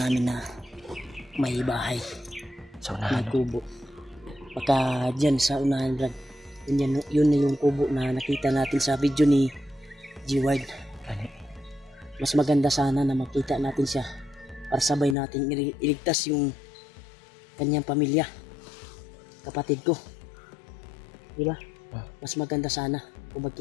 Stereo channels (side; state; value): right; drops out; at 15.2 s